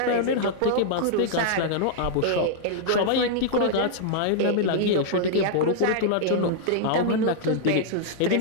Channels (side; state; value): both; different; correlation -0.01